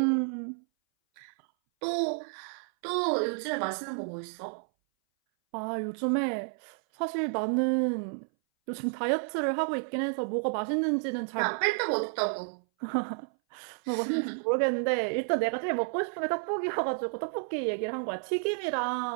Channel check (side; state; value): left; silent; 57 dB below the other